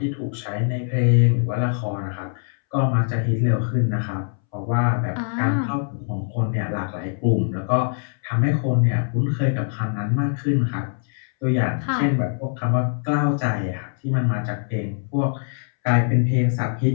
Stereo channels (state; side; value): silent; right; 64 dB below the other